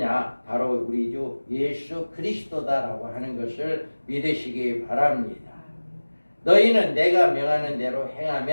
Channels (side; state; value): both; inverted; correlation -1.00